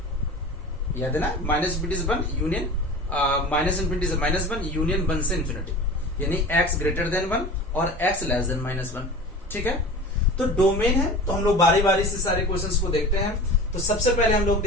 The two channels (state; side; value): normal; both; correlation 0.36